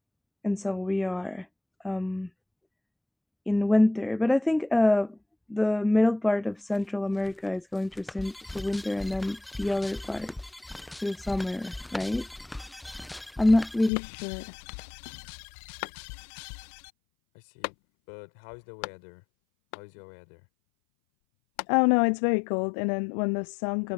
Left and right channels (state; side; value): drops out; right; at 13.9 s